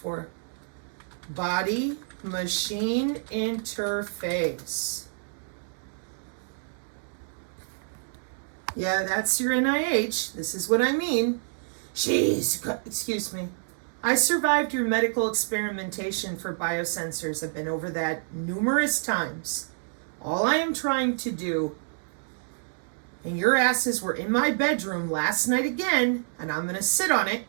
Body-machine interface. Yeah, that's your NIH. This is what I mean. Excuse me. I survived your medical experimentation for biosensors. I've been over that numerous times. All I am trying to do, and your asses were in my bedroom last night again, and I'm going to sit on it,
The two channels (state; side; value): silent; left; digital silence